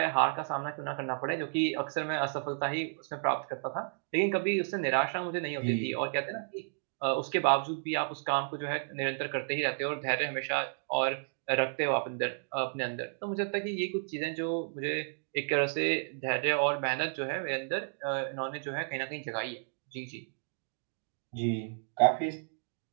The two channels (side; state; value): left; silent; digital silence